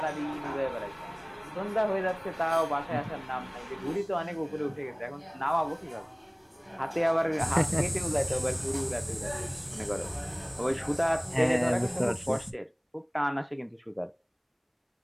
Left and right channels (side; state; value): both; identical; correlation 1.00